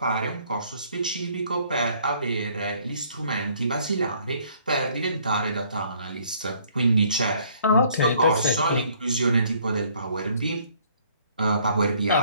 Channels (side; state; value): both; inverted; correlation -0.62